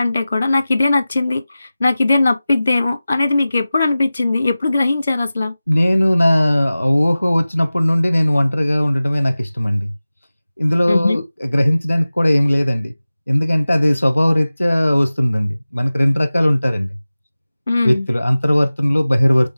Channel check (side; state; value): both; inverted; correlation -0.97